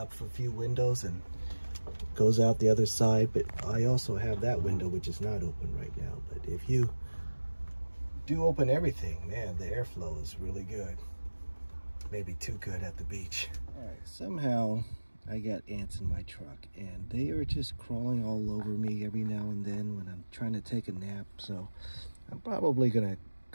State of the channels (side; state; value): both; inverted; correlation -1.00